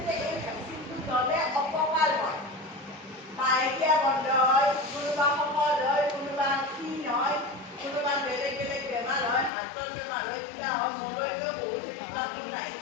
যে এই ভেকচিনটো ল'লে অপকাৰ হয়, মাহেকীয়া বন্ধ হয়, কোনোবা শকত হয়, কোনোবা ক্ষীণ হয়, কোনোবা বেলেগ বেলেগ বেমাৰ হয়, হাৰ্টৰ বেমাৰ হয়, কিবা হয়। মোলৈকেও বহুত এনেকুৱা গুণ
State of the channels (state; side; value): drops out; right; at 9.5 s